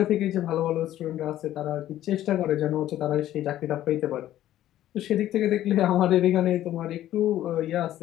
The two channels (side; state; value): right; quieter; 13.0 dB